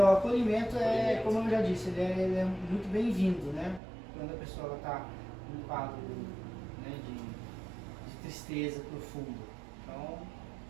acolhimento Acolhimento. como eu já disse, ele é muito bem-vindo, né? Quando a pessoa está num quadro, né, de tristeza profunda. Então,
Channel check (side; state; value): left; drops out; at 3.8 s